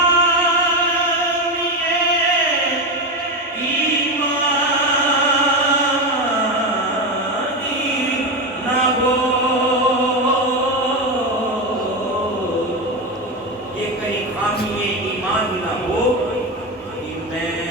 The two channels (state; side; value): normal; both; correlation 0.15